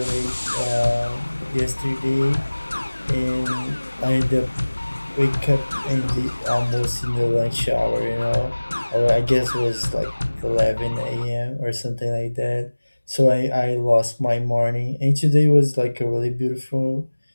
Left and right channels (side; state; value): both; inverted; correlation -1.00